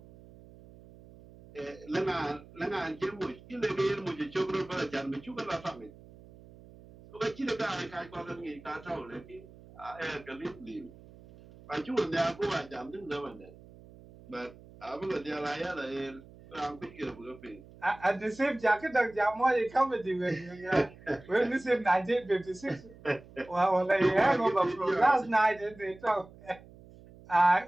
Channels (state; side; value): noise; right; hum, 21 dB below the sound